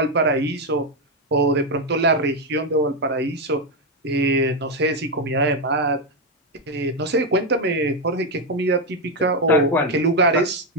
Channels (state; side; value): normal; both; correlation 0.06